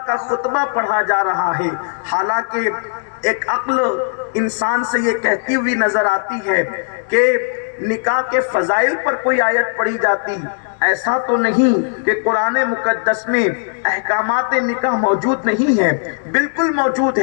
کا خطبہ پڑھا جا رہا ہے، حالانکہ ایک عقل انسان سے یہ کہتی ہوئی نظر آتی ہے کہ نکاح کے فضائل پر کوئی آیت پڑھی جاتی، ایسا تو نہیں کہ قرآن مقدس میں احکامات نکاح موجود نہیں ہیں، بالکل موجود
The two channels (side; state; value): right; silent; digital silence